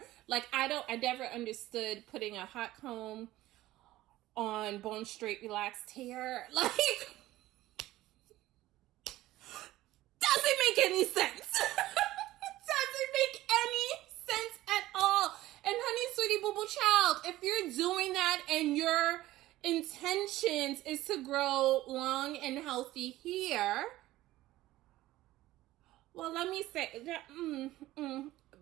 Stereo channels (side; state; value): left; quieter; 16.2 dB